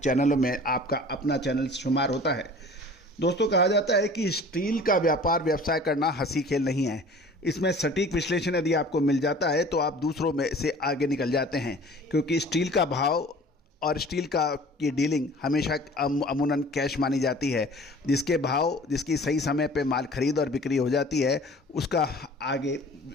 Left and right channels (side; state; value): both; normal; correlation 0.46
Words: में आपका अपना चैनल शुमार होता है। दोस्तों कहा जाता है कि स्टील का व्यवसाय करना हंसी खेल नहीं है। इसमें सटीक विश्लेषण यदि आपको मिल जाता है तो आप दूसरों में से आगे निकल जाते हैं, क्योंकि स्टील का भाव और स्टील की डीलिंग हमेशा अमूमन कैश मानी जाती है। जिसकी सही समय पे माल खरीद और बिक्री हो जाती है, उसका आगे